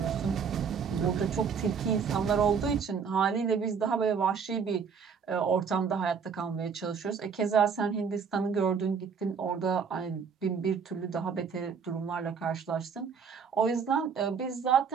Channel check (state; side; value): quieter; left; 6.2 dB